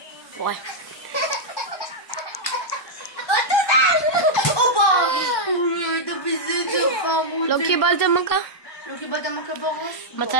וואי. לא קיבלת מכה? לא קיבלת מכה בראש?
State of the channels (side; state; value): right; late; 1.2 ms